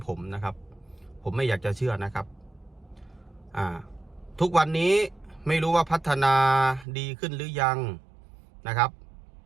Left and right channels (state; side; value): drops out; left; at 6.9 s